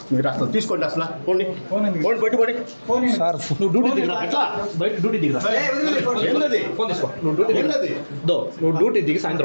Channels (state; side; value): inverted; both; correlation -1.00